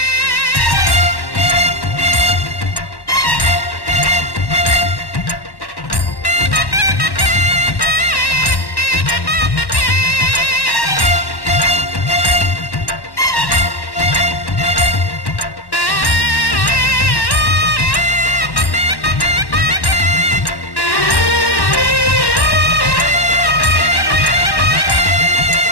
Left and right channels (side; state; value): right; late; 1.1 ms